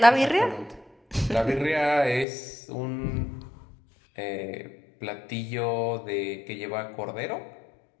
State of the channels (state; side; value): drops out; right; at 2.2 s